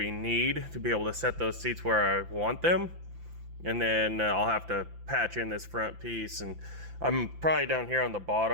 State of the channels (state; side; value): late; left; 5.9 ms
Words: need to be able to set those seats where I want them. And then I'll have to patch in this front piece, and I'm probably down here on the